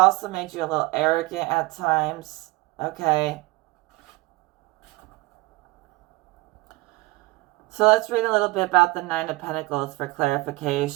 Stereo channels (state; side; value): quieter; left; 22.6 dB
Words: made you a little arrogant at times, okay? So let's read a little bit about the Nine of Pentacles for